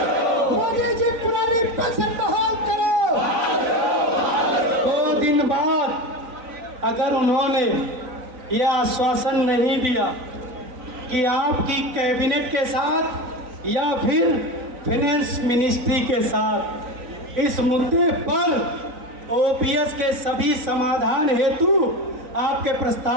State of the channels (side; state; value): left; late; 3.9 ms